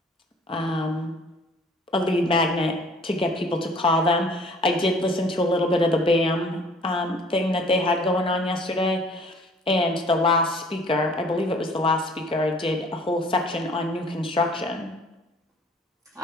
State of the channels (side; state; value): both; normal; correlation 0.53